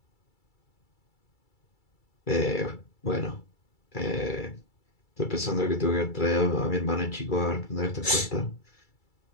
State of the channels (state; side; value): late; right; 2.3 ms